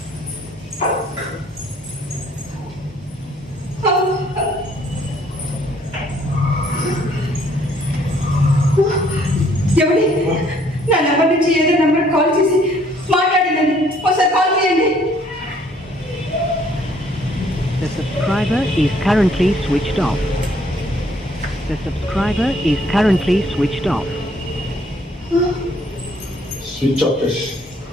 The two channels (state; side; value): normal; both; correlation 0.63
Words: ఎవరి నా నెంబర్ నుంచి ఏదో నెంబర్ కాల్ చేసి మాట్లాడిందండి. ఒకసారి కాల్ చేయండి. The subscriber is currently switched off. The subscriber is currently switched off. Switch off చేసి